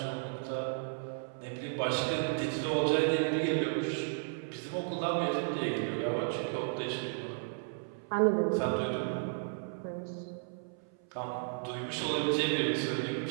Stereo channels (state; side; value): silent; left; 55 dB below the other